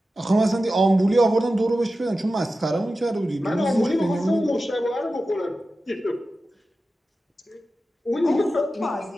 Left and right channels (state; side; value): normal; both; correlation 0.93